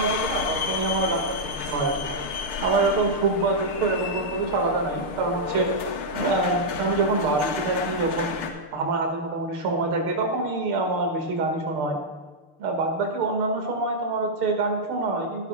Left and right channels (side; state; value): left; late; 6.6 ms